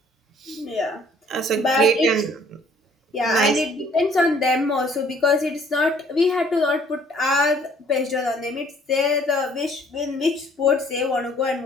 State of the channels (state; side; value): normal; both; correlation 0.59